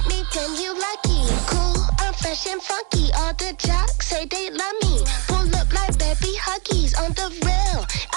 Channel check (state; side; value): quieter; left; 33.5 dB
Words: Funky, all the jocks say they love me. Pull up like baby huggies on the rail.